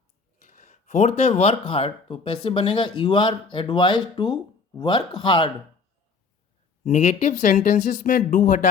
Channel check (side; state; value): right; quieter; 4.7 dB